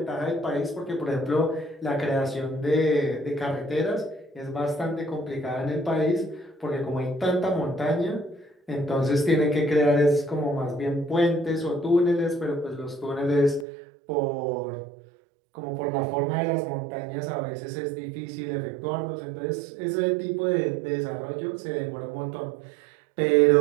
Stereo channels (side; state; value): left; drops out; at 13.7 s